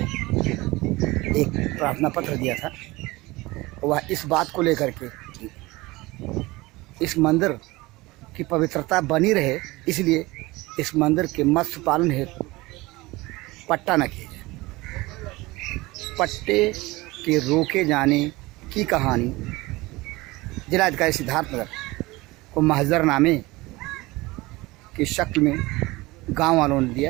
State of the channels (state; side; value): quieter; left; 21.2 dB